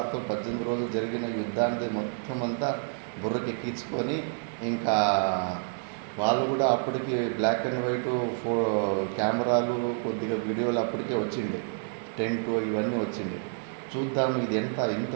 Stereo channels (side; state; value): left; silent; 59 dB below the other